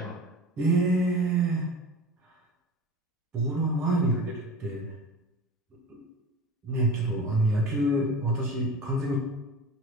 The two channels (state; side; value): normal; both; correlation 0.35